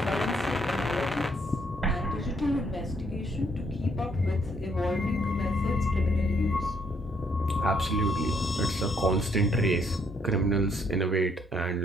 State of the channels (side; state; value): both; normal; correlation 0.70